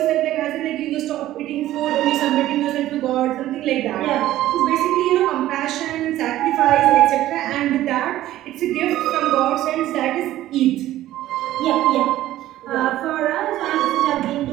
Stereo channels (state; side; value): quieter; left; 14.3 dB